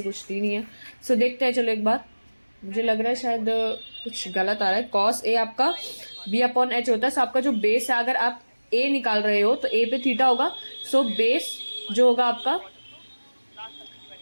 कुछ दी नहीं है। सो देखते हैं, चलो एक बार, मुझे लग रहा है शायद कुछ गलत आ रहा है। कॉस ए आपका b अपॉन एच होता है। सो आपका जो बेस है, अगर आप a निकाल रहे हो तो a पे थीटा होगा। सो बेस जो होगा आपका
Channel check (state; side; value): inverted; both; correlation -1.00